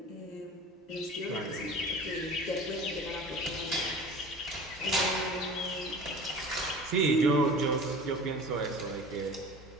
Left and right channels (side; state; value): both; normal; correlation 0.40